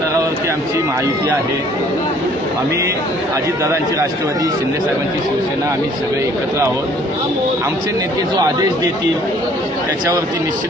आमची महायुती आहे. आम्ही अजितदादांची राष्ट्रवादी, शिंदे साहेबांची शिवसेना, आम्ही सगळे एकत्र आहोत. आमचे नेते जो आदेश देतील त्याच्यावरती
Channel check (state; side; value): normal; both; correlation 0.58